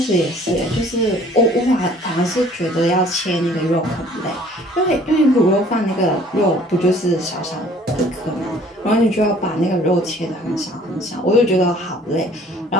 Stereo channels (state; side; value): normal; both; correlation 0.54